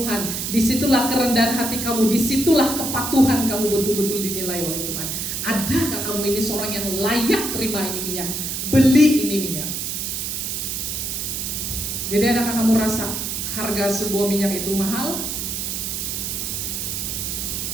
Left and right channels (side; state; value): right; noise; hiss, 3 dB below the sound